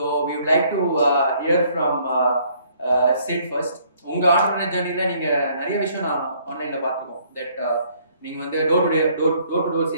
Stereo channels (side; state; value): both; inverted; correlation -0.63